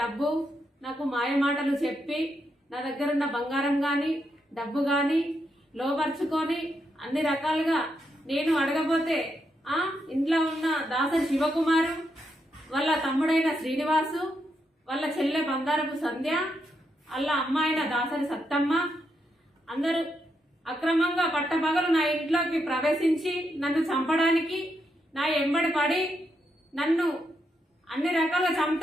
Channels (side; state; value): both; normal; correlation 0.81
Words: డబ్బు నాకు మాయమాటలు చెప్పి నా దగ్గర ఉన్న బంగారం కానీ డబ్బు కానీ లోబర్చుకొని అన్ని రకాలుగా నేను అడగబోతే ఇంట్లో ఉన్న దాసరి శివకుమారు వాళ్ళ తమ్ముడైన శ్రీనివాసు వాళ్ళ చెల్లె బంగారపు సంధ్య వాళ్ళ అమ్మాయిన దాసరి సత్తమ్మ అందరూ అక్రమంగా పట్టపగలు నా ఇంట్లోకి ప్రవేశించి నన్ను చంపడానికి నా ఎంబడి పడి నన్ను అన్ని రకాలుగా